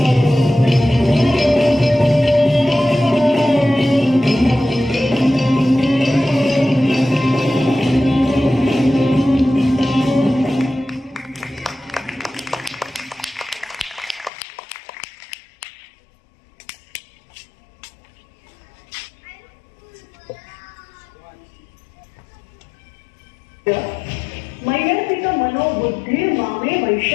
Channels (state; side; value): drops out; right; at 14.3 s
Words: मैयर्पिक मनोबुद्धी मामे